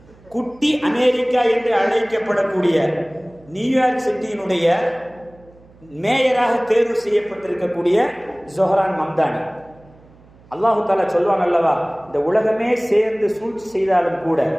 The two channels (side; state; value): right; noise; hum, 27 dB below the sound